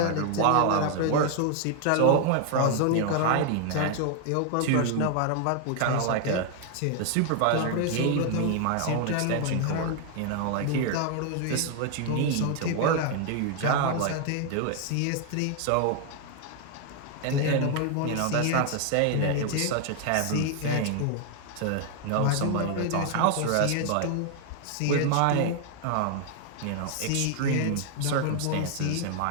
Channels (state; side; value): different; both; correlation 0.00